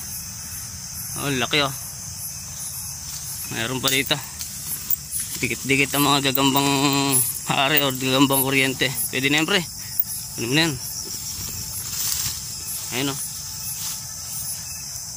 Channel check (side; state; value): left; noise; hum, 28 dB below the sound